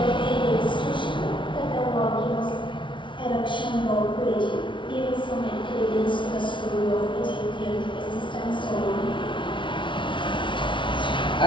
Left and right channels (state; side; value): late; right; 0.24 ms